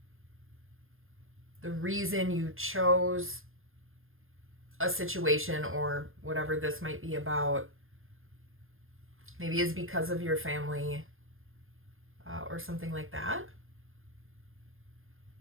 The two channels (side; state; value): left; late; 0.60 ms